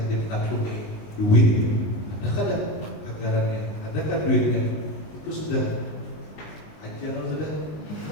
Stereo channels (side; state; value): right; late; 19 ms